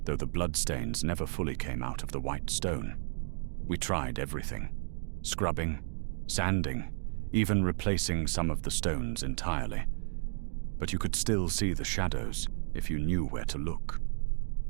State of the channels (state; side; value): silent; left; 56 dB below the other